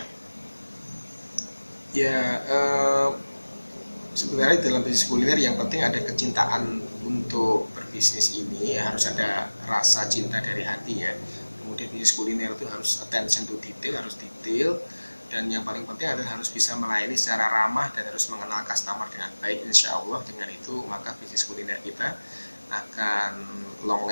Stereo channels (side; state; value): both; inverted; correlation -1.00